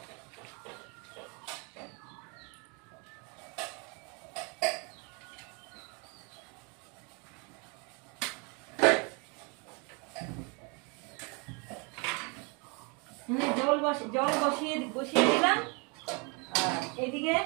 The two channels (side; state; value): left; quieter; 32.3 dB